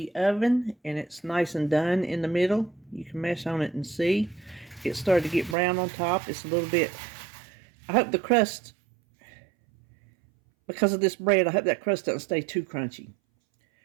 oven, and it's nice and done in the middle. You can mess on it and see. It started to get brown on top. It's a little bit, I hope the crust, because of this bread, I hope that crust doesn't stay too crunchy.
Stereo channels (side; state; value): left; drops out; at 5.6 s